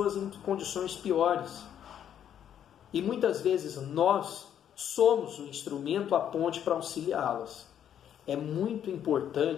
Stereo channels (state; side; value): quieter; right; 9.7 dB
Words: em condições piores. E muitas vezes nós somos o instrumento, a ponte para auxiliá-las. É muito